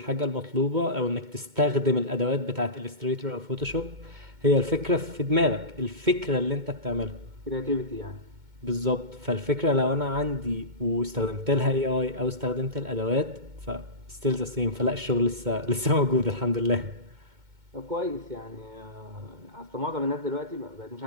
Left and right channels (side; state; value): left; late; 2.2 ms